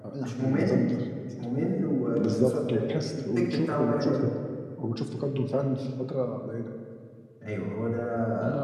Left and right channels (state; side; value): identical; both; correlation 1.00